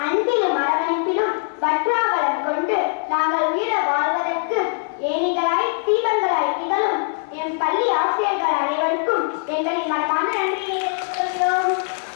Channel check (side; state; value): right; silent; digital silence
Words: அன்பிலும் அரவணைப்பிலும் வற்றாவலம் கொண்டு நாங்கள் உயர வாழ்வதற்கு ஏணிகளாய் தீபங்களாய் திகழும் என் பள்ளி ஆசிரியர்கள் அனைவருக்கும் எங்களின் மனமான நன்றியை தெரிவித்துக் கொள்கிறோம்.